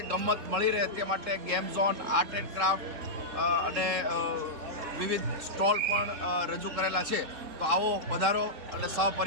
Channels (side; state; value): left; late; 3.7 ms